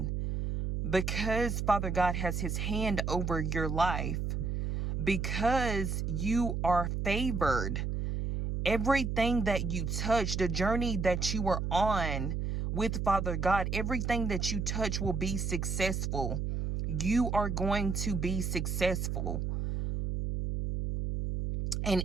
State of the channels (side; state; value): right; noise; hum, 1 dB below the sound